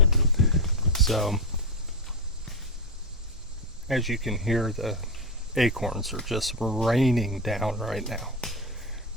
So as you can hear, the acorns are just raining down right now.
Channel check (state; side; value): normal; both; correlation 0.12